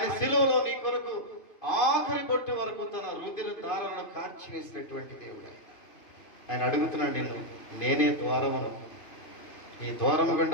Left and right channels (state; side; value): late; right; 2.9 ms